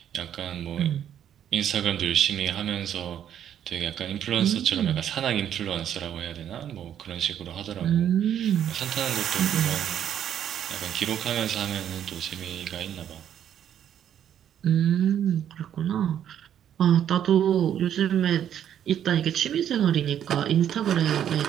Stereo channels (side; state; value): left; quieter; 9.9 dB